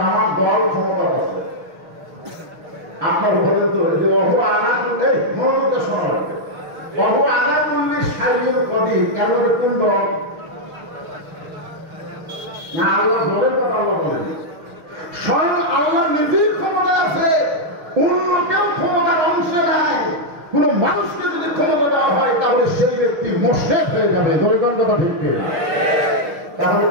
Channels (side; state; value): left; late; 6.4 ms